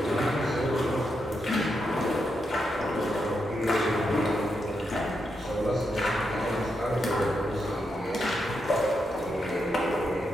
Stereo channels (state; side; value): normal; both; correlation 0.83